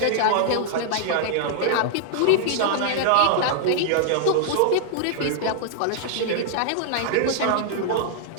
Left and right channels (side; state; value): both; different; correlation 0.00